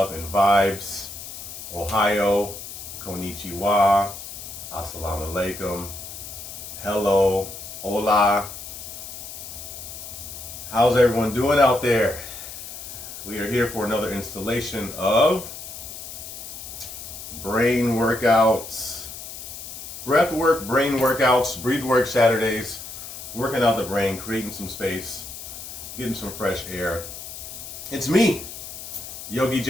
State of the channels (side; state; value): left; noise; hiss, 11 dB below the sound